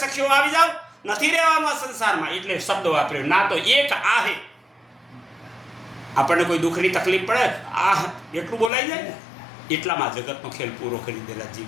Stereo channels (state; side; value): drops out; right; at 8.7 s